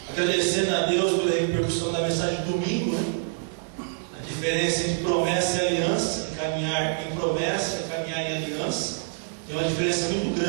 Agradecendo a Deus pela repercussão da mensagem de domingo, né? A diferença entre promessa e aliança, caminhar em promessa e caminhar em aliança, tem uma diferença muito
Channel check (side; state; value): left; silent; digital silence